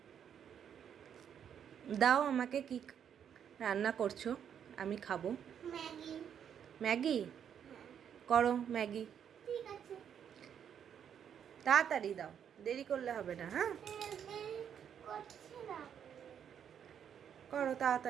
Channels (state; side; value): quieter; left; 8.5 dB